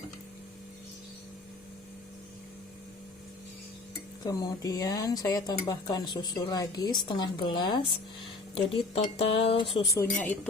Kemudian saya tambahkan susu lagi setengah gelas. Jadi total susunya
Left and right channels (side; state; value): right; quieter; 3.4 dB